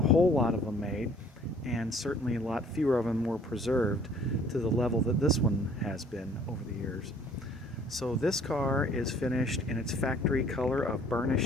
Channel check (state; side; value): normal; both; correlation 0.56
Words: a whole lot of them made, and certainly a lot fewer of them were preserved to the level that this one has been over the years. So this car is finished in its factory color of